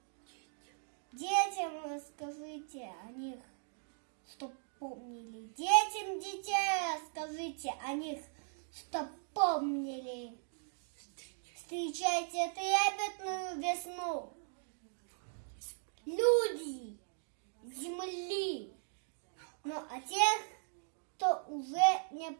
детям расскажите о них, чтоб помнили. Детям детей расскажите о них, чтоб помнили. Встречайте трепетную весну. Люди земли, но о тех, кто уже не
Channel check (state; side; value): silent; left; digital silence